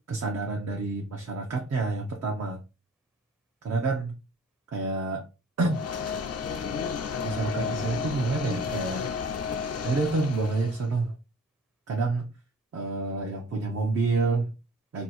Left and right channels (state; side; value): normal; both; correlation 0.48